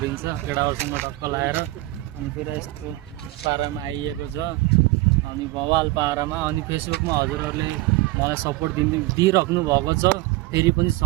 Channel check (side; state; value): left; quieter; 19.0 dB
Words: केटाहरूसँग टक्क लगाएर। अनि फेरि यस्तो पारामा आइएको छ अनि बवाल पारामा। अनि फेसबुकमा हजुरहरूले मलाई सपोर्ट दिइराख्नु भएको छ, फेरि पनि